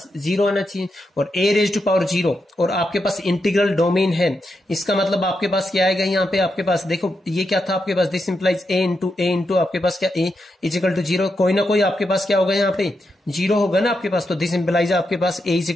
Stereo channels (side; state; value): both; normal; correlation 0.85